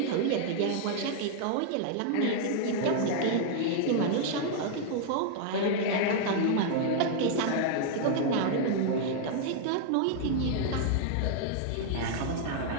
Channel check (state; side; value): different; both; correlation 0.00